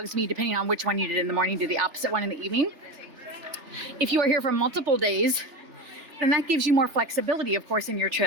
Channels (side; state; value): left; late; 3.3 ms